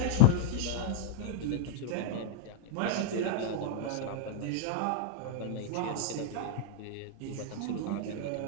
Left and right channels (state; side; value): different; both; correlation -0.01